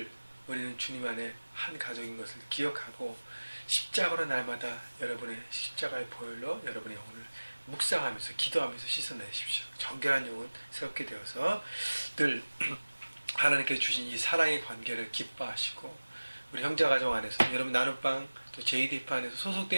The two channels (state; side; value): inverted; both; correlation -1.00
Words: 우리는 주님 안에 한 가족인 것을 기억하고 십자가로 날마다 여러분의 십자가의 보혈로 여러분의 영혼을 묵상하면서 기도하면서 씻어내십시오. 정결한 영혼 새롭게 되어서 늘 하나님께서 주신 이 사랑의 관계를 기뻐하시고 우리 형제가정 안에서 여러분 나눔방 또 JDF 안에서